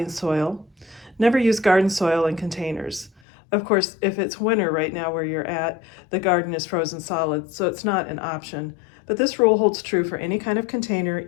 soil. Never use garden soil in containers. Of course, if it's winter right now where you're at, the garden is frozen solid, so it's not an option. But this rule holds true for any kind of container,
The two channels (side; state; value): right; drops out; at 3.2 s